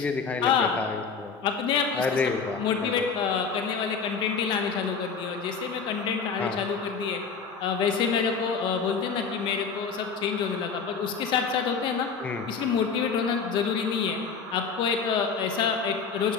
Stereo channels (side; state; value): right; quieter; 5.6 dB